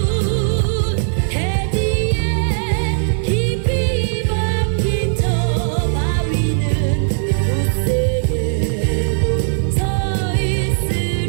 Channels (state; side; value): silent; left; 57 dB below the other